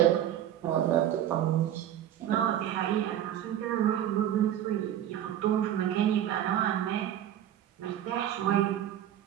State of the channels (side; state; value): left; quieter; 11.3 dB